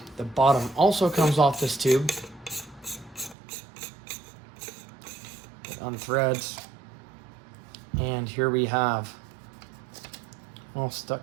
the bottom also comes off this tube. It unthreads. And here we have all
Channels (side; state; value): left; drops out; at 3.4 s